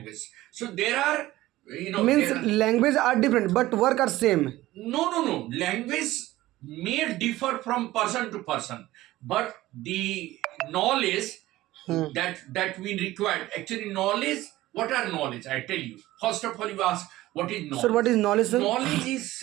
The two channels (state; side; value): quieter; left; 16.7 dB